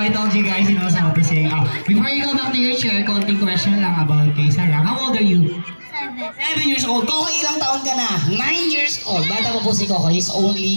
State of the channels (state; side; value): inverted; both; correlation -1.00